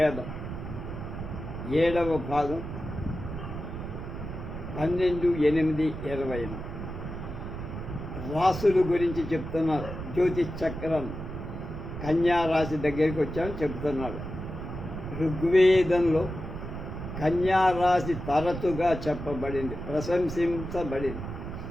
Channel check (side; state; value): right; noise; rumble, 8 dB below the sound